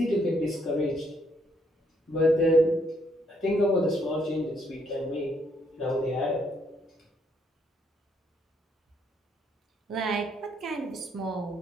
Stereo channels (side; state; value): both; normal; correlation 0.71